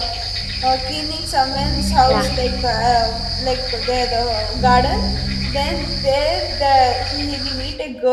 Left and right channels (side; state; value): both; identical; correlation 1.00